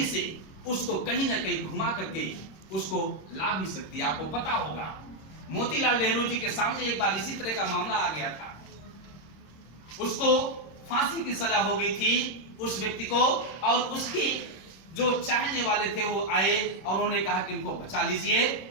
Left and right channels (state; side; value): late; right; 26 ms